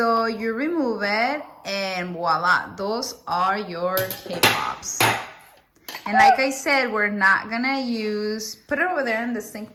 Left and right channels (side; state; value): both; identical; correlation 1.00